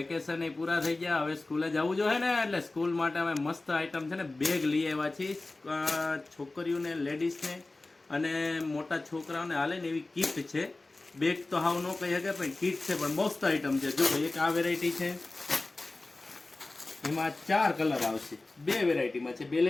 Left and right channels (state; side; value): quieter; right; 3.1 dB